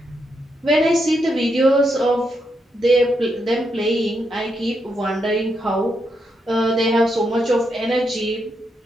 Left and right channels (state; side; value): normal; both; correlation 0.81